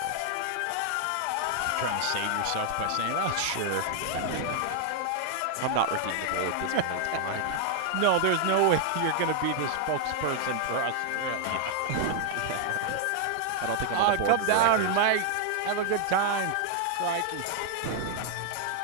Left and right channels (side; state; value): both; different; correlation 0.00